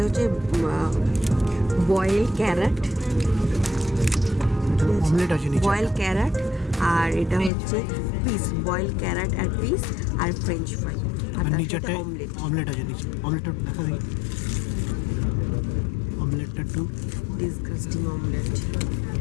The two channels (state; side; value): drops out; right; at 7.5 s